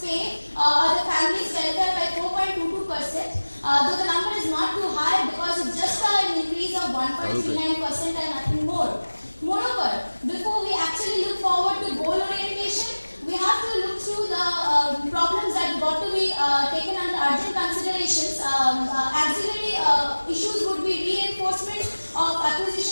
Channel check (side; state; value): both; inverted; correlation -1.00